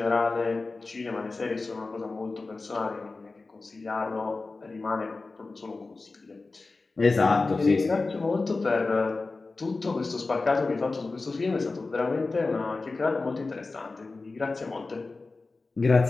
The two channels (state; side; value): quieter; right; 3.7 dB